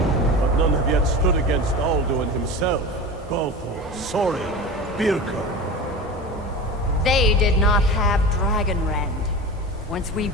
But none have yet stood against Alduin himself. Balthor, Sorin, Birka. They did not have Dragonrend. Once we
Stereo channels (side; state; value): both; normal; correlation 0.30